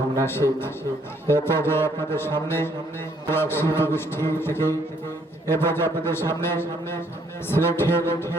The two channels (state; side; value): normal; both; correlation 0.66